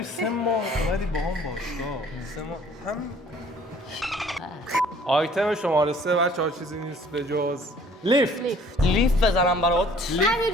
3 ماه اومدی با هم باشگاه 3 ماه هم آیتم شماره 3 بچه‌ها چیزی نیست به جز لیفت لیف بزنم برات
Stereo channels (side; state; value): both; normal; correlation 0.55